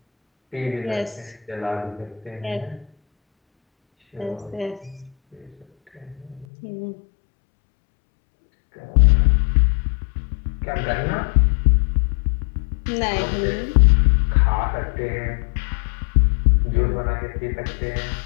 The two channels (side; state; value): right; drops out; at 6.5 s